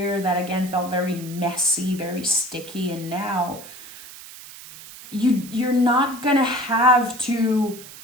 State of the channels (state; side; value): noise; right; hiss, 16 dB below the sound